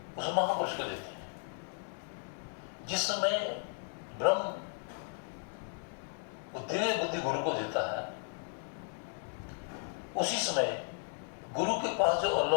उस महापुरुष को देते हैं। जिस समय ब्रह्म वो दिव्य बुद्धि गुरु को देता है, उसी समय गुरु के पास जो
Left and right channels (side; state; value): right; silent; 54 dB below the other